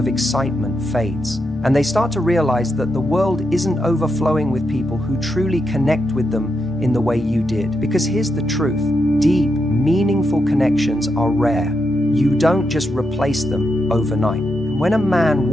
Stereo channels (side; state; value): both; normal; correlation 0.83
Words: excitement fades, and they start to realize that the world isn't overflowing with people who truly connect with them in the way you did. Because here's the truth. Deep, meaningful connections are rare. You don't just replace them overnight. When a man